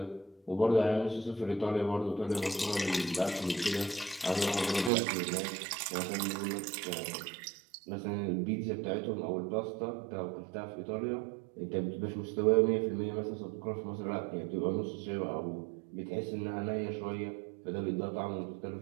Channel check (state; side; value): drops out; left; at 4.9 s